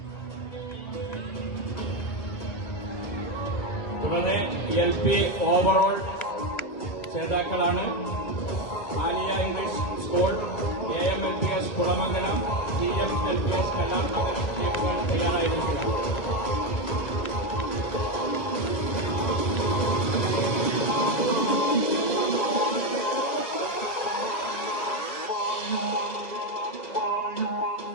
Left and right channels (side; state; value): right; late; 1.9 ms